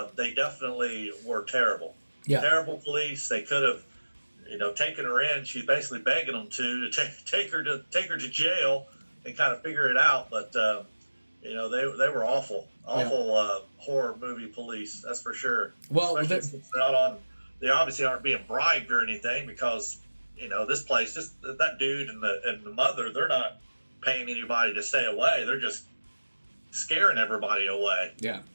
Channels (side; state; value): both; inverted; correlation -1.00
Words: they definitely were terrible. Yeah. Terrible police. They could have, taken her in. She's basically begging them to take her to jail and kind of figure it out. But they were awful horror movie police. That's for sure. Well, especially since they're not on. They obviously aren't being bribed or anything because this place, just that dude and the mother, they're not paying anybody to stay away. They're just scaring everybody away. Yeah.